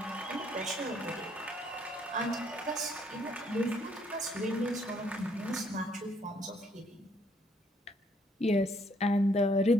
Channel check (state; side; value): normal; both; correlation 0.67